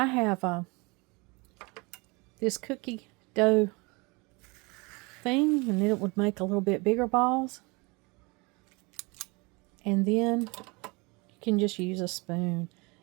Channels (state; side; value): quieter; left; 27.1 dB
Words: have this cookie dough thing, and it would make a little bit bigger balls. And then you can just use a spoon